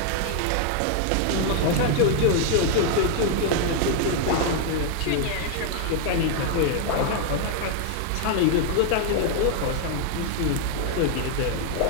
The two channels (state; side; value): different; both; correlation 0.00